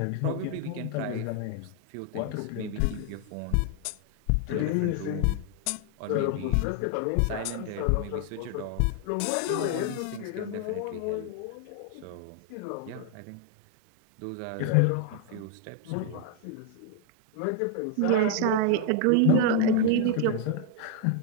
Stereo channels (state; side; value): different; both; correlation 0.00